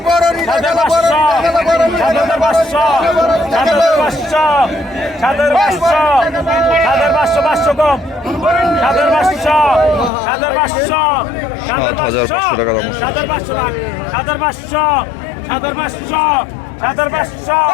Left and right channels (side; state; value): right; drops out; at 10.1 s